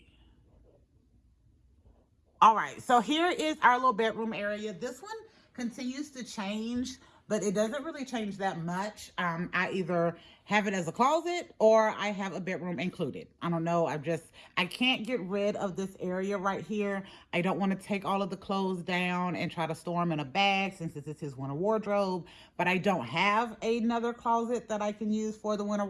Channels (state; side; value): identical; both; correlation 1.00